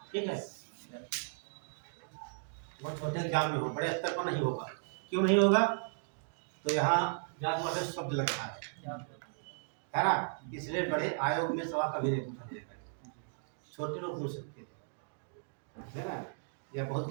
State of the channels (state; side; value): silent; left; digital silence